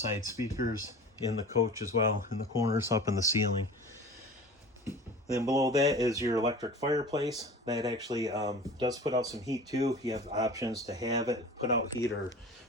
speakers in the coach as well, in the corners, up in the ceiling. Then below that is your electric fireplace. That actually does put out some heat too. You have options to have it put out heat or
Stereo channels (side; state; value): both; normal; correlation 0.38